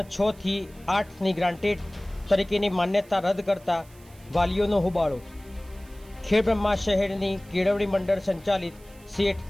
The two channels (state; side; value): noise; right; hiss, 26 dB below the sound